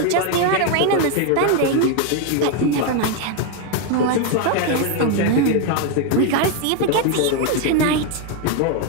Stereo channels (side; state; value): both; different; correlation 0.01